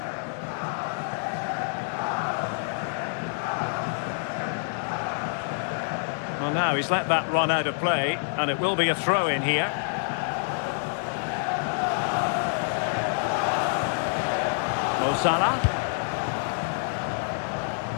Well, now he's let that run out of play, and it will be a throw-in here. Mo Salah.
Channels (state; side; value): silent; right; 60 dB below the other